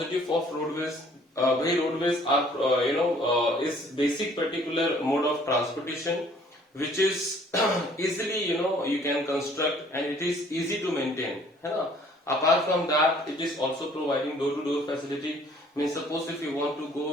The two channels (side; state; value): both; normal; correlation 0.57